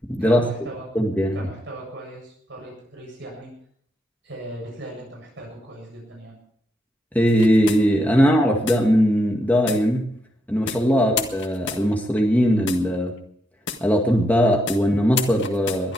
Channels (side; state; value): both; normal; correlation 0.81